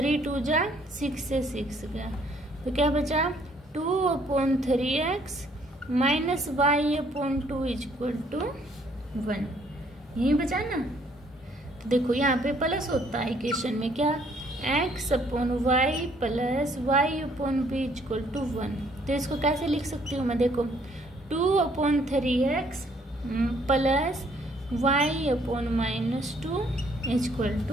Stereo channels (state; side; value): normal; both; correlation 0.64